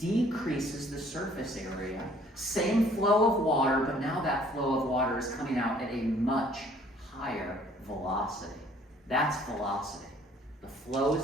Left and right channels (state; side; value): normal; both; correlation 0.58